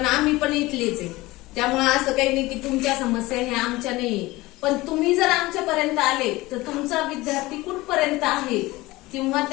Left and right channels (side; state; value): right; quieter; 19.9 dB